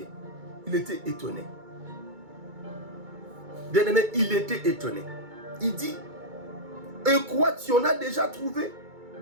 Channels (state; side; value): late; left; 2.2 ms